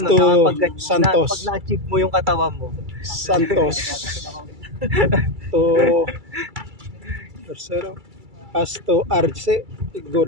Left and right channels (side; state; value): left; late; 2.3 ms